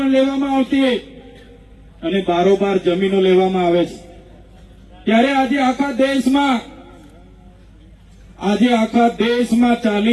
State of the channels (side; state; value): both; identical; correlation 1.00